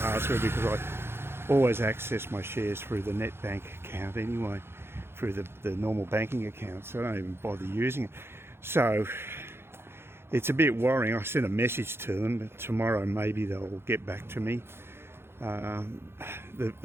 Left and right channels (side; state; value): left; late; 0.11 ms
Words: because I always access my shares through the net bank account anyway, through the normal banking account, so I don't even bother using it. So it's a bit worrying. I sent a message to them, but tomorrow maybe they'll get back to me.